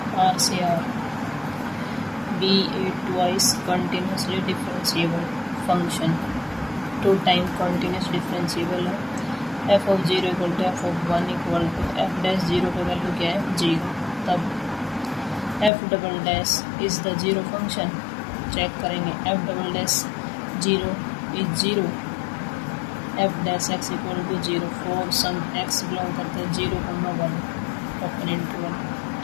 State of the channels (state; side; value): drops out; right; at 15.7 s